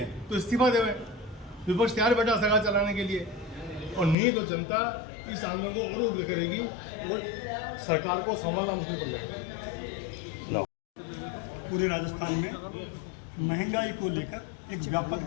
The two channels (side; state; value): right; drops out; at 4.2 s